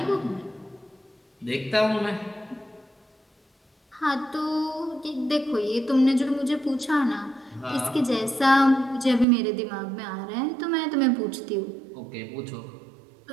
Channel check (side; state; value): left; drops out; at 9.2 s